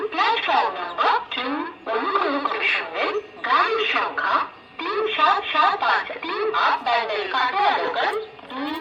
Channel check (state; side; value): identical; both; correlation 1.00